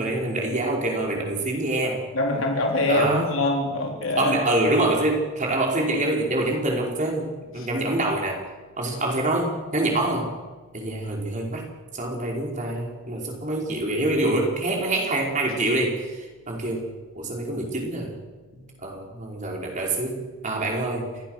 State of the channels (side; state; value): left; noise; hum, 29 dB below the sound